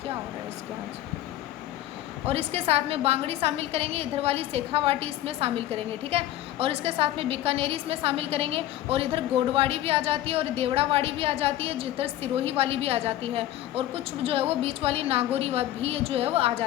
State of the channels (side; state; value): right; quieter; 13.9 dB